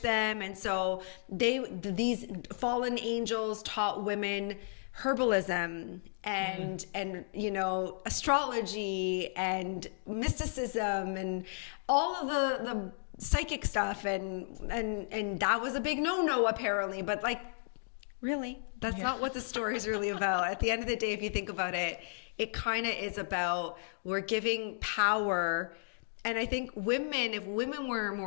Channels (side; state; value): right; silent; digital silence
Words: and so these fallen angels taught women herbalism and you know, astrology and mysticism and all of the psychic stuff, and that was a big no apparently. But like, really, that's not what the story is really about. At the end of the day, if you think about it, it kind of is about, we're giving power. And I think if women were